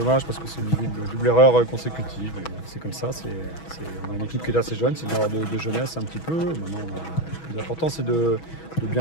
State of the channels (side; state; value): right; late; 6.2 ms